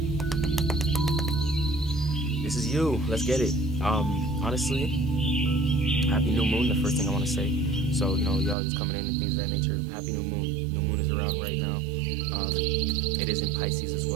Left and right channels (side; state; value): left; drops out; at 8.6 s